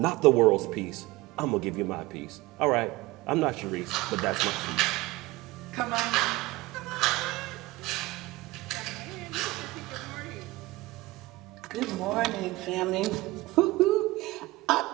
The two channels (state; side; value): quieter; left; 20.0 dB